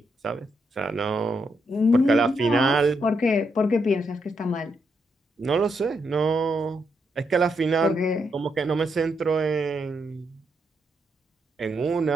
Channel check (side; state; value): both; normal; correlation 0.80